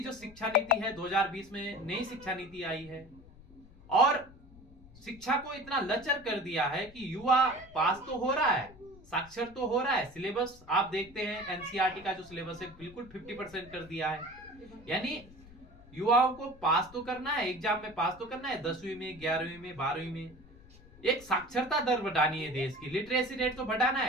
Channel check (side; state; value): left; noise; rumble, 22 dB below the sound